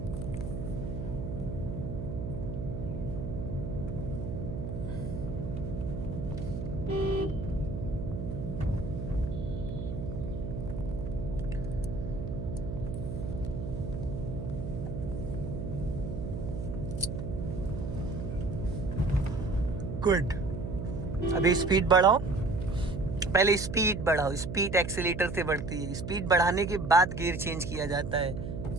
गुड। अभी स्पीड बढ़ाओ। पहले स्पीड बढ़ाओ। स्पीड एक्सीलेटर से बढ़ती है। स्पीड बढ़ाने के बाद गियर चेंज किया जाता है।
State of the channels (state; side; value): noise; right; hum, 5 dB below the sound